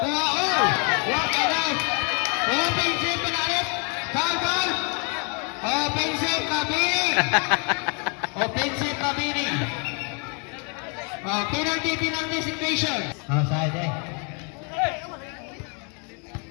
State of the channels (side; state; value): right; quieter; 36.2 dB